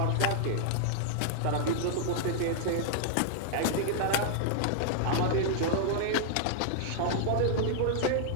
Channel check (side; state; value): both; different; correlation -0.01